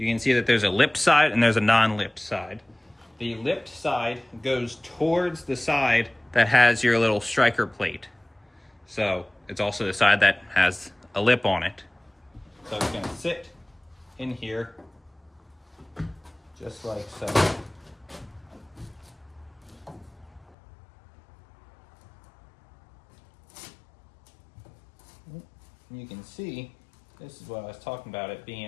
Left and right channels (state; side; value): drops out; right; at 20.6 s